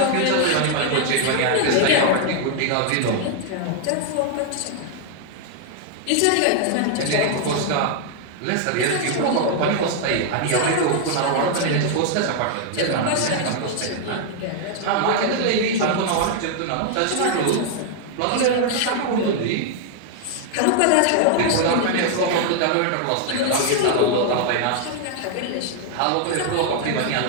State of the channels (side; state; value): both; different; correlation 0.00